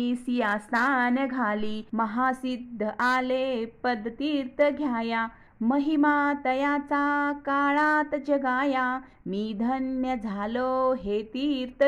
सिया स्नान घाली. महासिद्ध आले पदतीर्थ घ्याया, महिमा तयाचा काळात जगाया. मी धन्य झालो हे तीर्थ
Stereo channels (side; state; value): both; identical; correlation 1.00